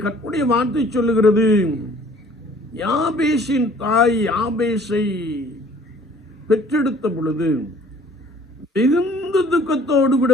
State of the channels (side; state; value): both; normal; correlation 0.55